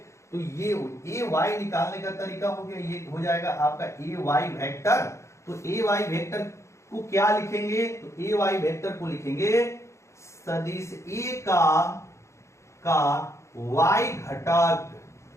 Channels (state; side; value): late; right; 0.14 ms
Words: तो ये AY निकालने का तरीका हो गया, ये हो जाएगा आपका AY वेक्टर, तो AY वेक्टर को क्या लिखेंगे, तो AY वेक्टर को लिखेंगे सदिश A का y घटक,